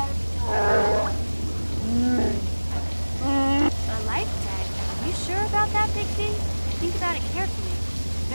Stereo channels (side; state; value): both; inverted; correlation -1.00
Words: A life tag. You sure about that, Big Z? Think about it carefully. You